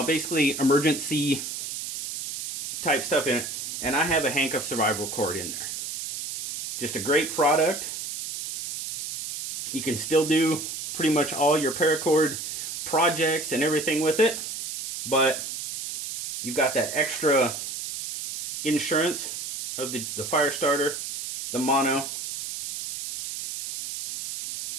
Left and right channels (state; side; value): noise; right; hiss, 6 dB below the sound